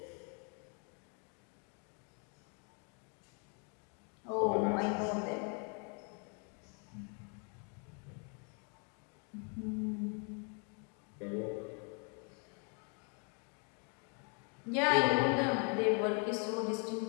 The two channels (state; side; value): quieter; right; 38.4 dB